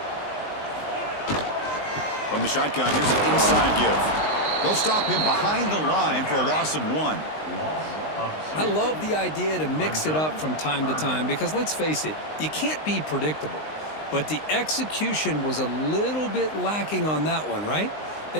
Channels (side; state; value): right; late; 19 ms